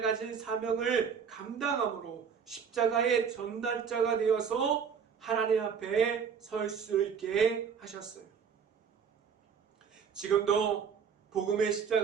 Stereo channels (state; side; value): quieter; left; 6.8 dB